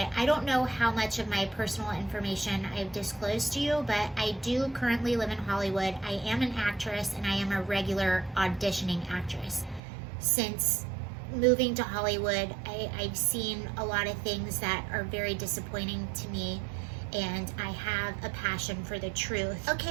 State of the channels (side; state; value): left; drops out; at 9.8 s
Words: I don't know how much of my personal information I've disclosed to you, but I do currently live in Hollywood. I am an actress, and I am a regular auditioning actress. Since moving to Hollywood, I've seen a lot of things that are very disappointing to me, and I have a passion for the truth.